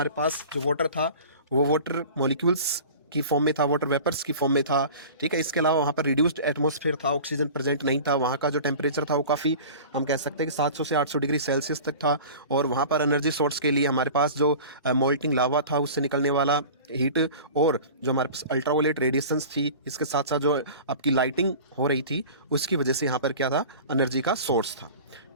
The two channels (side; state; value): both; inverted; correlation -0.39